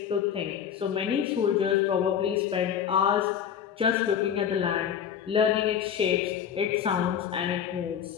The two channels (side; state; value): right; quieter; 8.6 dB